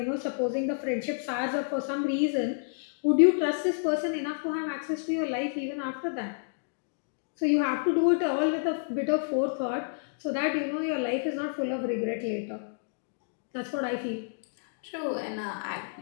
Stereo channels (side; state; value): right; silent; digital silence